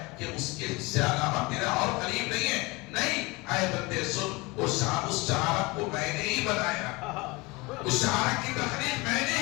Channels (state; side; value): quieter; right; 24.5 dB